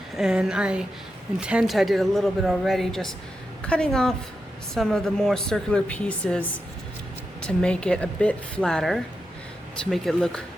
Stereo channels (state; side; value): normal; both; correlation 0.88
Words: and I did a little bit already, just cutting off some of the more circular pieces to make it a bit flatter, to make it look